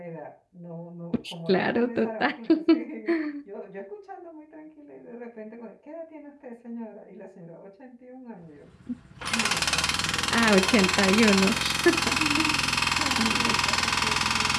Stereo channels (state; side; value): identical; both; correlation 1.00